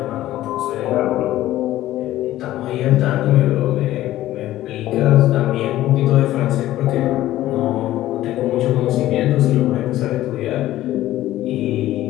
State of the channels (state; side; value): quieter; right; 14.6 dB